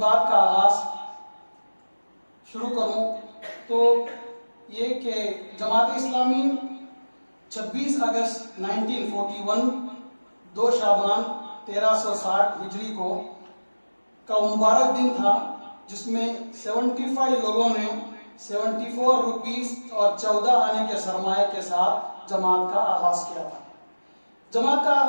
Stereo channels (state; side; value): inverted; both; correlation -1.00